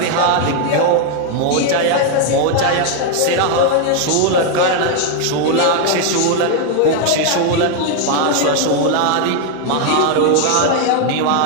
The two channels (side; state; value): both; different; correlation 0.00